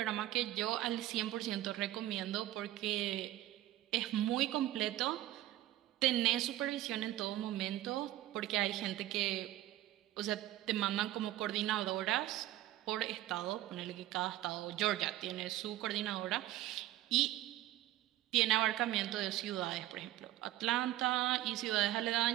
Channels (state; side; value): quieter; left; 14.8 dB